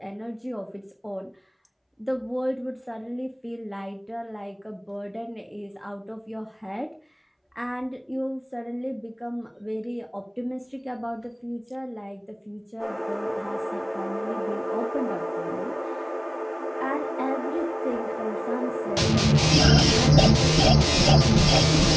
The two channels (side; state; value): both; identical; correlation 1.00